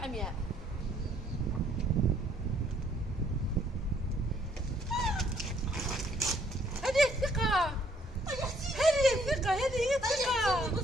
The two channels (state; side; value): normal; both; correlation 0.66